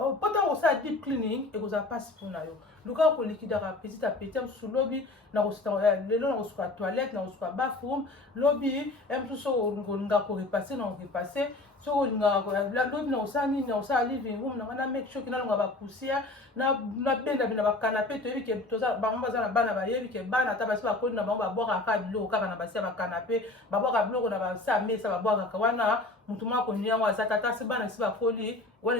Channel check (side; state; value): right; quieter; 3.0 dB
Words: ntango kosala deep cleaning ekozala mpasi mpona yo luka kolikidaka petit à petit mosusu lobi lelo na kosuka toilette na kosuka bathroom lobi mosusu soki olinga korepasse na korepasse soki olingaka lobi na kosala nini na kosala living room nanga na make sure ke nalonga bapoussière na benda na bakanape toyebi ke bango baza na bana bayebi ke bana ata basi bakoli na bango babwakaka biloko kaka na basi ya bakanape babwaka biloko na basi ya mesa babwakaka wana motu moko akoni yango aza tata si bana esi bakoli wana